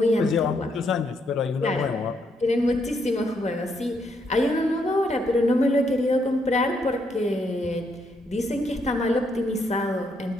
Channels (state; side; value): normal; both; correlation 0.76